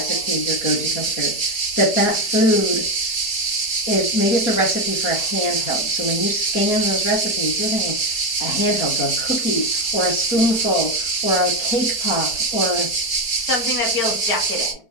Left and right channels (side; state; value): right; late; 4.4 ms